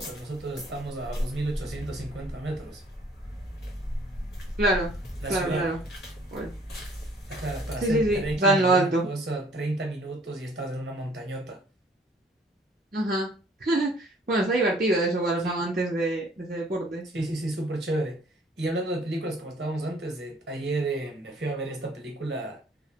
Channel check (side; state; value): both; normal; correlation 0.58